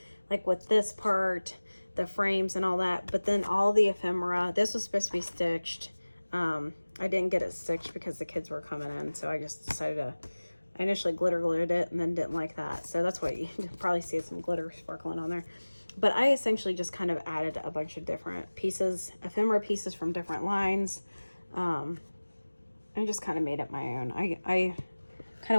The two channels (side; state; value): both; inverted; correlation -1.00